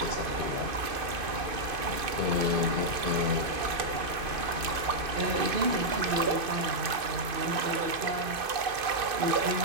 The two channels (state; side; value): late; left; 2.5 ms